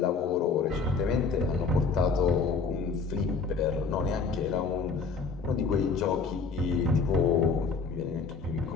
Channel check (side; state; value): right; quieter; 4.9 dB